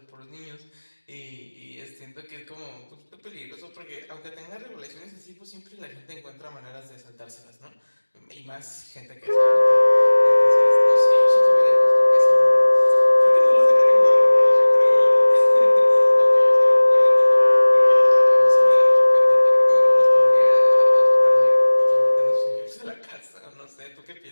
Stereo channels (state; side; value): inverted; both; correlation -1.00